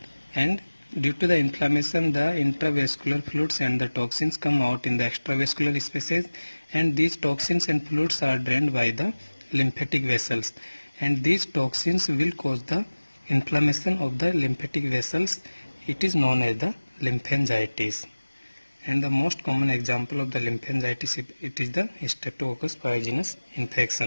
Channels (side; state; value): both; inverted; correlation -1.00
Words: and due to the inflammation the intravascular fluids and the toxins come out in the extravascular spaces, and these toxins and fluids are drained by the lymphatic vessels, and these toxins will cause the inflammation of the lymphatic vessels. It is known as the lymphangitis. And the most common example of the lymphangitis, it is the Streptococcus pyogenes